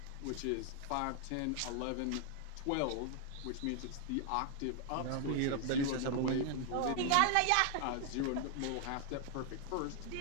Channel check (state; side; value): different; both; correlation 0.00